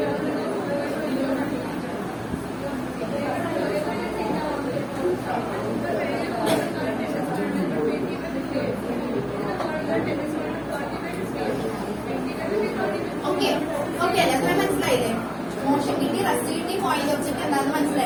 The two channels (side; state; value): both; identical; correlation 1.00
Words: Okay, okay, അത്ര മനസ്സിലായില്ലേ? Motion കിട്ടി, rest കിട്ടി, point object എന്താണെന്ന്